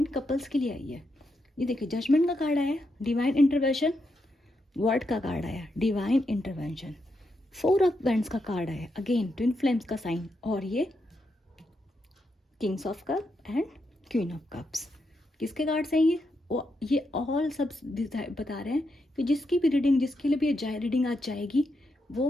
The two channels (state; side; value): normal; both; correlation 0.83